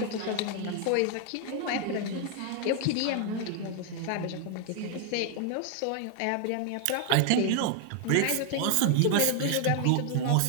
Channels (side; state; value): both; different; correlation 0.00